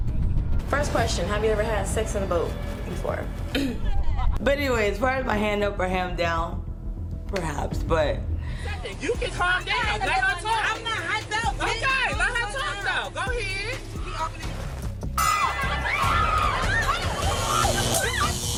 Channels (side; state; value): both; identical; correlation 1.00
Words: First question: have you ever had sex in a boat before? But anyway, as far as my hand up or hand down, perhaps, but You can calm down. Let her talk. I'm not hyped out. Okay, let her talk though. Go ahead.